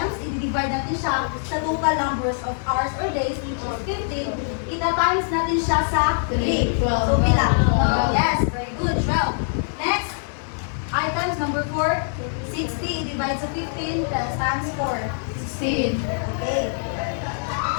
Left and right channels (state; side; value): silent; right; digital silence